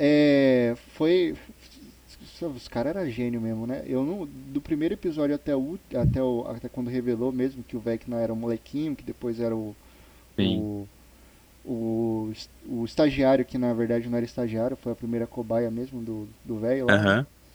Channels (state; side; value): identical; both; correlation 1.00